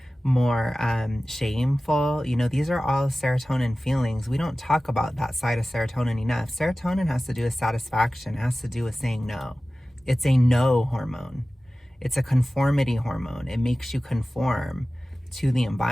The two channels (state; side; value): normal; both; correlation 0.96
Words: more shameful. You know, these are all serotonin feelings. We don't talk about that side of serotonin enough. Serotonin has to do with satisfaction, it has to do with saying no. It's a no hormone. It's a conformity hormone. It makes you conform to the